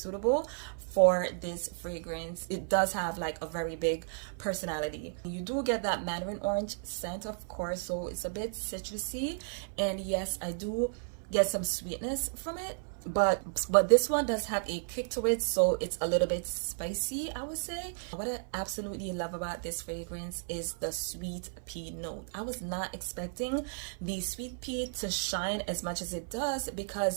for this fragrance. It does have like a very big personality. You do get that mandarin orange scent, of course, so it's a bit citrusy, and yes, I do get some sweetness from it, but this one does have a kick to it, so it's a little bit spicy, I would say. What I absolutely love about this fragrance is the sweet pea note. I was not expecting the sweet pea to shine as much as it does,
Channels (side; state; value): left; silent; 56 dB below the other